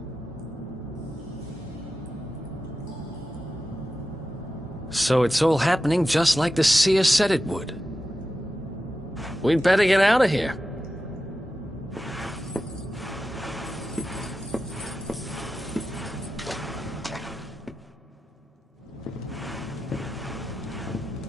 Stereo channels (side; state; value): both; normal; correlation 0.91